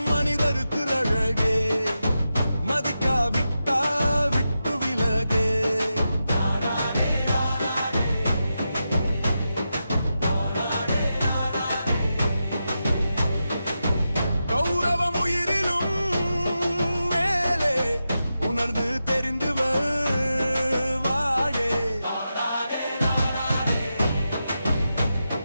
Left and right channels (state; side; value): inverted; both; correlation -0.89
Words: மனிதருக்கு அழகே மதிக்காவிட்டா விட்டு விலகே கௌரவம் உயிரிலும் மேலே உணர்ந்து தெரிந்து வாழே